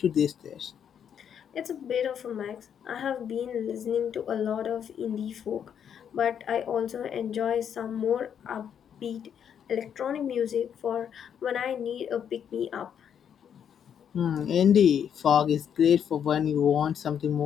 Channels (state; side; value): quieter; right; 8.4 dB